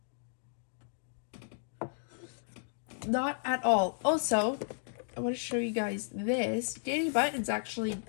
Not at all. Also, I want to show you guys this. Danny Button's actually,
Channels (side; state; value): right; silent; digital silence